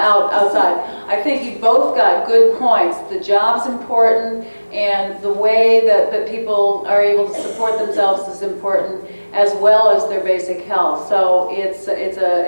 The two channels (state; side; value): inverted; both; correlation -1.00